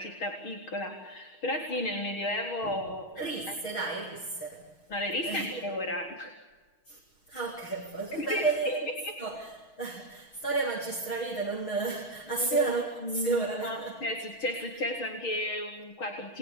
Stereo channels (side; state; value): right; late; 6.3 ms